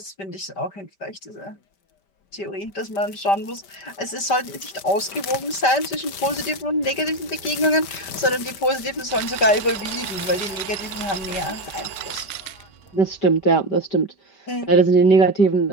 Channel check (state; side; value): late; right; 5.1 ms